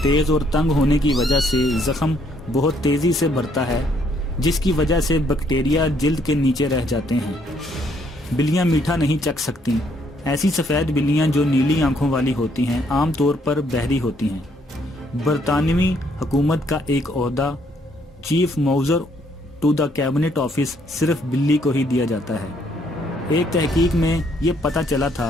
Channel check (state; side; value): normal; both; correlation 0.69